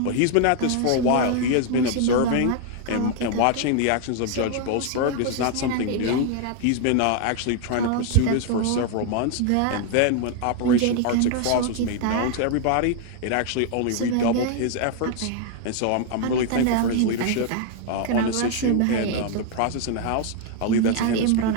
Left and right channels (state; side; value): different; both; correlation 0.00